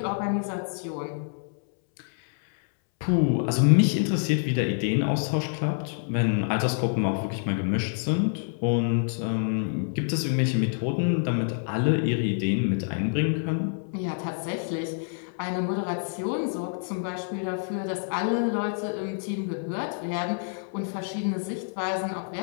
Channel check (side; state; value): right; silent; 60 dB below the other